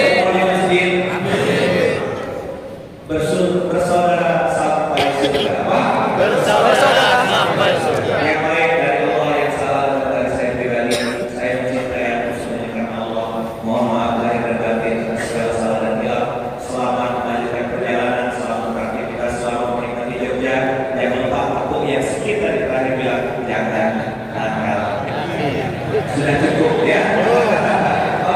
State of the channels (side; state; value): both; identical; correlation 1.00